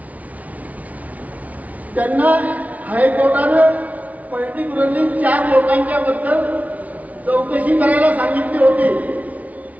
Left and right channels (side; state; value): left; late; 0.071 ms